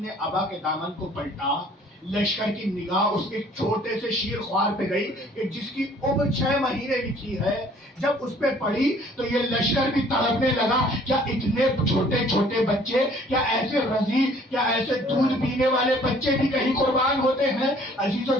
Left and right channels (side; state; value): both; normal; correlation 0.56